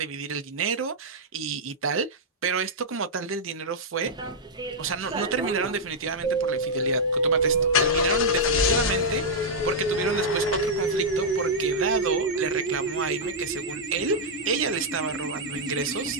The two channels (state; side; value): normal; both; correlation -0.05